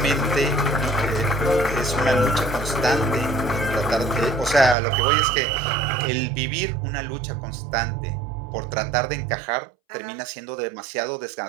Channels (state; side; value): drops out; left; at 4.8 s